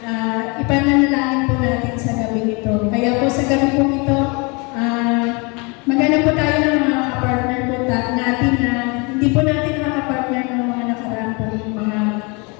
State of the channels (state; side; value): quieter; right; 30.1 dB